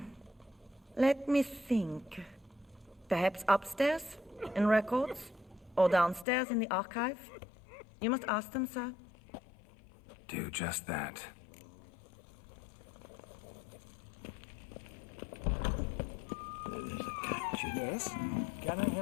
Let me think. Perhaps upstairs, in records? Or downstairs in the archive? You must ask them, sir. Do just that. There's a catch. Yes? Can I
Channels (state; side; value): drops out; right; at 6.2 s